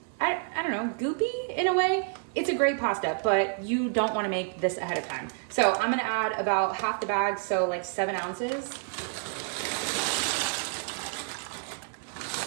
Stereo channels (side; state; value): left; silent; 59 dB below the other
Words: I don't know, goopy in a way. It's a great pasta, but you don't want to make this ahead of time. So I'm going to add about half the bag, so like 7 ounces.